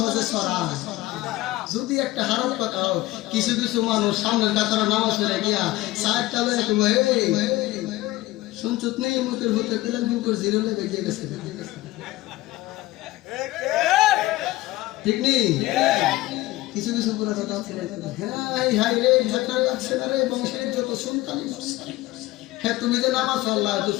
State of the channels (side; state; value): right; quieter; 18.0 dB